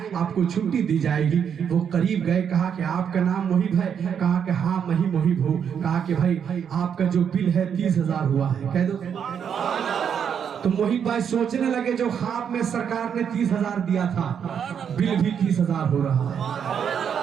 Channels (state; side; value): quieter; left; 7.8 dB